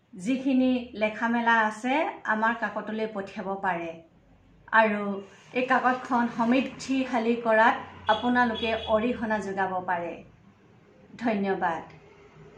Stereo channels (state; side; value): identical; both; correlation 1.00